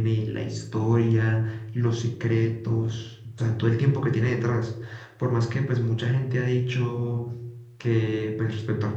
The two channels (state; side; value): identical; both; correlation 1.00